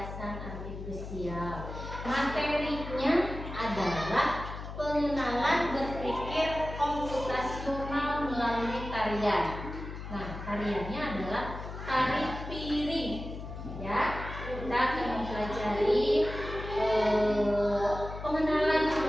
artifisial. Materinya adalah pengenalan berpikir komputasional melalui tarian. Nah, tariannya adalah tari piring. Ya, kita akan mempelajari pengenalan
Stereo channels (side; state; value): left; noise; hum, 9 dB below the sound